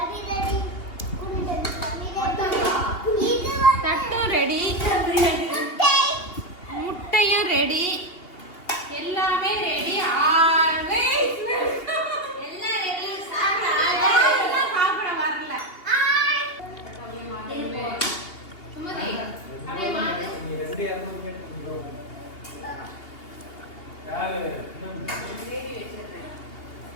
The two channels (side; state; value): right; late; 2.8 ms